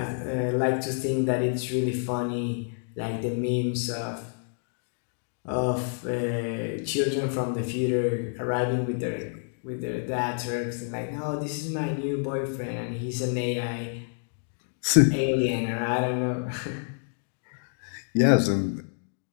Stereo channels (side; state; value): right; silent; 59 dB below the other